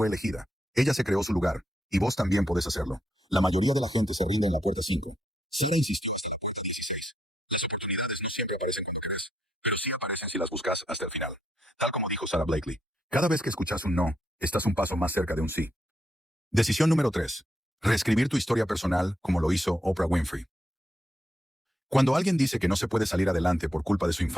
elegida. Ella se creó su lugar, y vos también podés hacerlo. La mayoría de la gente se rinde en la puerta 5. Sarah insistió hasta la puerta 16. Las oportunidades no siempre aparecen cuando querés, pero sí aparecen si las buscas hasta el final. Tal como dijo Sarah Blakely. Cada vez que escuchas un no, estás un paso más cerca de un sí. Decisión número 3. Reescribir tu historia personal como lo hizo Oprah Winfrey. Cuando alguien dice que no se puede salir adelante por culpa de su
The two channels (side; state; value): both; normal; correlation 0.79